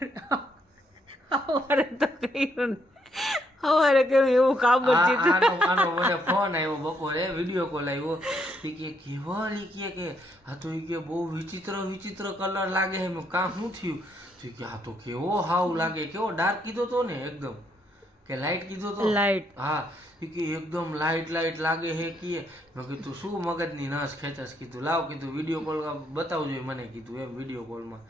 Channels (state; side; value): normal; both; correlation 0.74